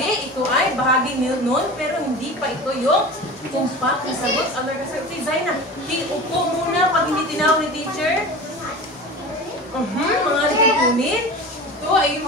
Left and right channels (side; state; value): both; normal; correlation 0.33